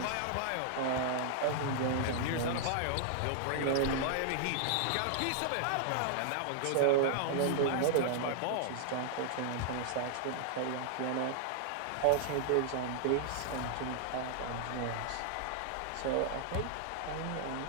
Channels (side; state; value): both; different; correlation -0.01